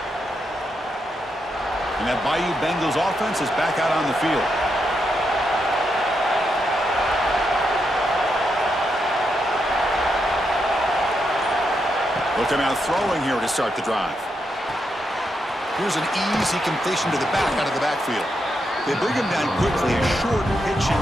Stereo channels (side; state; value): both; normal; correlation 0.82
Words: And that Bayou Bengals offense is back out on the field. Looking out throwing here to start the drive. Here's an easy completion to the back out of the backfield. They bring him down quickly, a short pitch